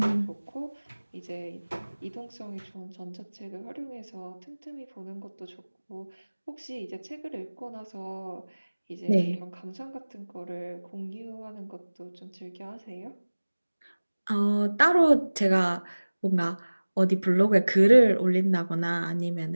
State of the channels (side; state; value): both; inverted; correlation -1.00